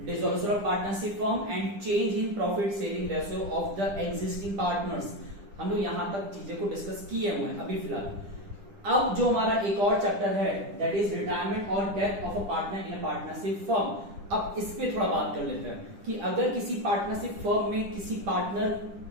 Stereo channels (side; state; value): left; late; 10 ms